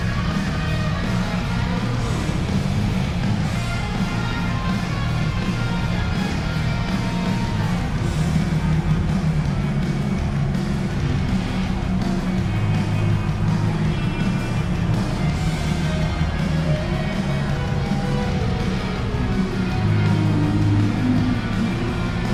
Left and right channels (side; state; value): both; identical; correlation 1.00